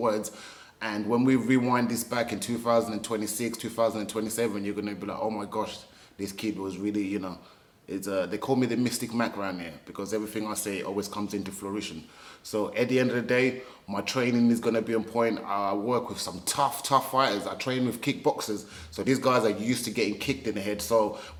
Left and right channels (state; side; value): identical; both; correlation 1.00